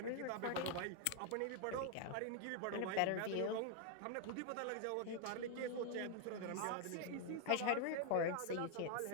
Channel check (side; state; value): both; different; correlation 0.00